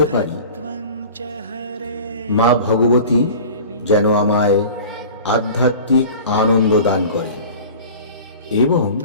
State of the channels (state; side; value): inverted; both; correlation -0.40